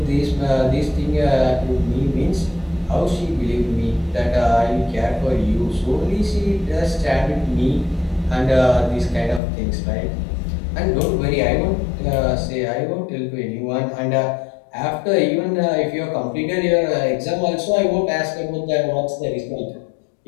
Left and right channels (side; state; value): right; drops out; at 9.4 s